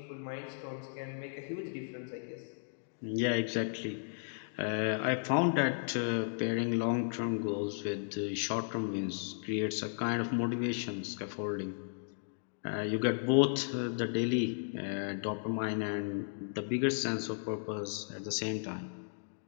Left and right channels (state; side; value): silent; right; digital silence